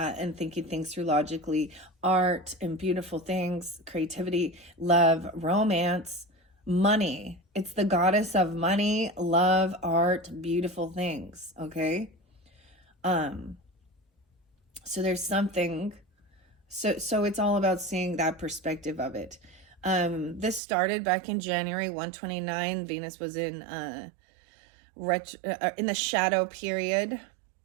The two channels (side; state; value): left; drops out; at 20.6 s